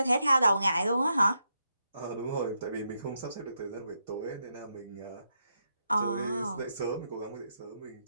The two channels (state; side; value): inverted; both; correlation -0.82